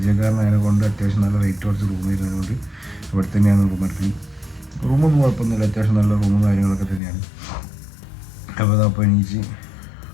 കൊണ്ട് അത്യാവശ്യം നല്ല റേറ്റ് കുറച്ച് റൂം വരുന്നതുകൊണ്ട് ഇവിടെ തന്നെയാണ് റൂം എടുക്കുന്നത്. റൂമൊന്നും കുഴപ്പമൊന്നുമില്ല, അത്യാവശ്യം നല്ല റൂമും കാര്യങ്ങളൊക്കെ തന്നെയാണ്. അപ്പോൾ അതപ്പോൾ എണീച്ച്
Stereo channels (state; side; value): drops out; right; at 7.0 s